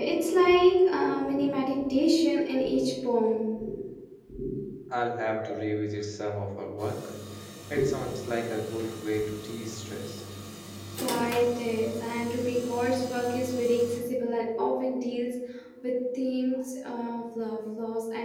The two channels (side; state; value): both; identical; correlation 1.00